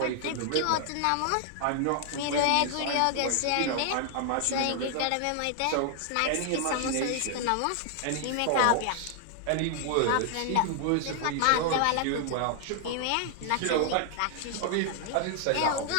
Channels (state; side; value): different; both; correlation 0.00